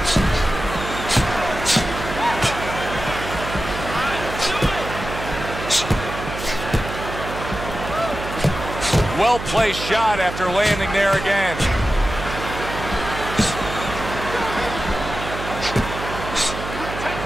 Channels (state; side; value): noise; right; hum, 8 dB below the sound